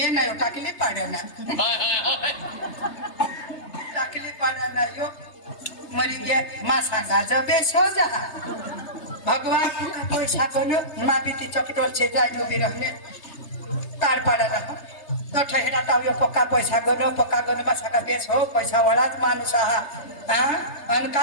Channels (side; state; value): right; late; 3.3 ms